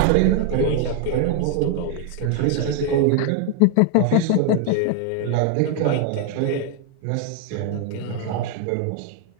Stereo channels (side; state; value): both; different; correlation 0.00